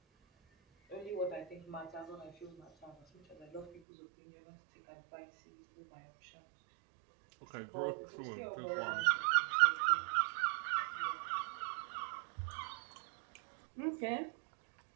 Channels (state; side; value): drops out; left; at 3.8 s